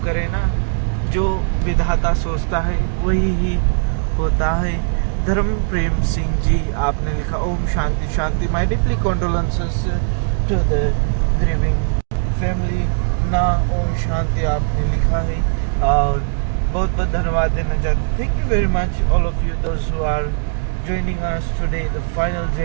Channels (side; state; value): left; silent; digital silence